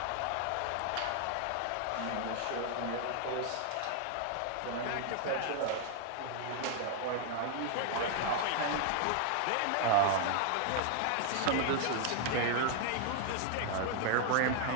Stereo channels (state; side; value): different; both; correlation 0.00